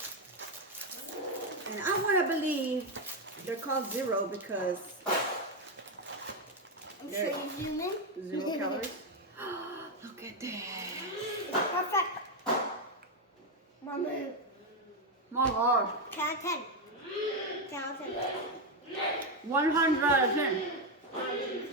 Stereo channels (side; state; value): both; normal; correlation 0.06